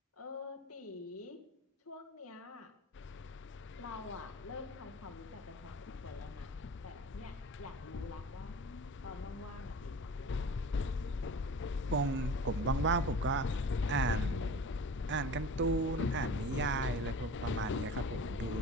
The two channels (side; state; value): both; normal; correlation 0.39